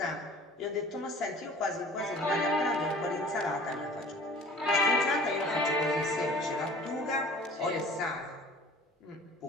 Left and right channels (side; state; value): both; normal; correlation 0.46